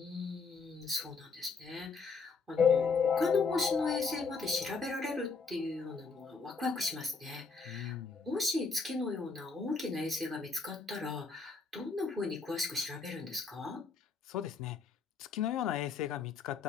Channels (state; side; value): quieter; right; 4.7 dB